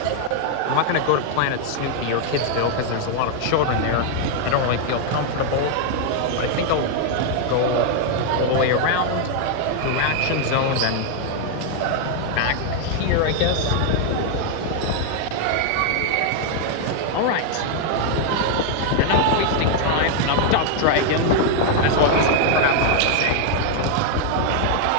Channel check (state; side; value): different; both; correlation 0.00